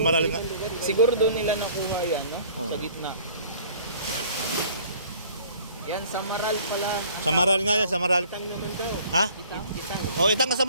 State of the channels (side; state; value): both; inverted; correlation -0.52